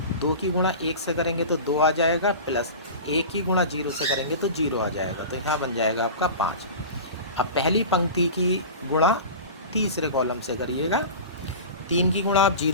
2 की गुणा 1 से करेंगे तो 2 आ जाएगा, प्लस 1 की गुणा 0 से करेंगे तो 0 आ जाएगा, तो यहाँ बन जाएगा आपका 5। अब पहली पंक्ति की गुणा तीसरे कॉलम से करिएगा, 3 की गुणा आप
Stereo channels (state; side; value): inverted; both; correlation -0.33